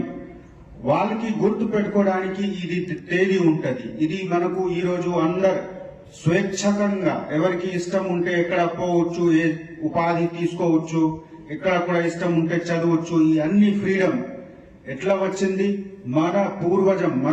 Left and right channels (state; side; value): identical; both; correlation 1.00